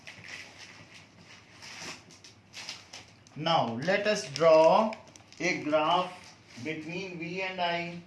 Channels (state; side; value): identical; both; correlation 1.00